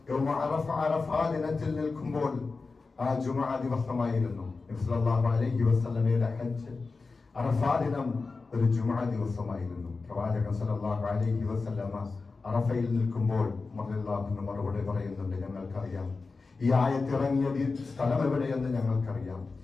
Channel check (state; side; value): quieter; right; 4.1 dB